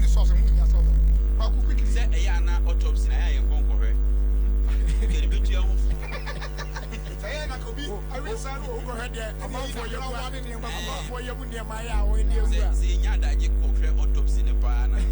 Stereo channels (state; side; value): identical; both; correlation 1.00